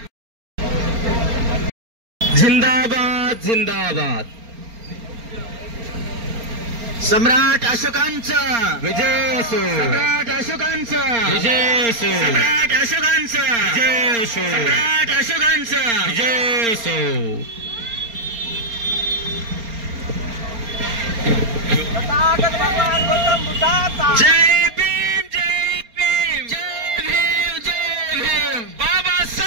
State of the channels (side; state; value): left; late; 4.3 ms